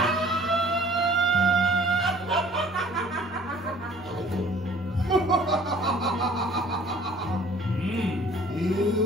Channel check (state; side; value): normal; both; correlation 0.53